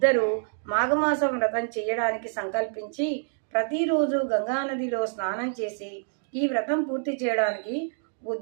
మాఘమాసం వ్రతం చేయడానికి సంకల్పించి ప్రతిరోజు గంగానదిలో స్నానం చేసి ఈ వ్రతం పూర్తి చేయడానికి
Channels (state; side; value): silent; left; digital silence